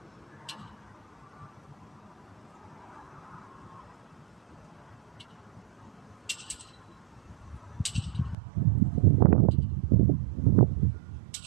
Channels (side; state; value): left; drops out; at 8.3 s